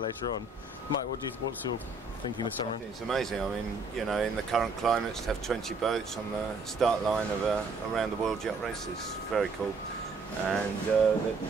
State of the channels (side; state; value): left; quieter; 3.7 dB